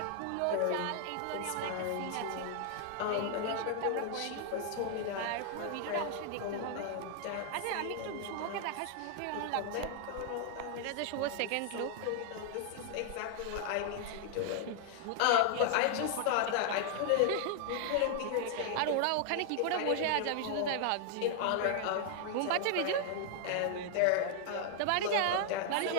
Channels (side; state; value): both; different; correlation 0.00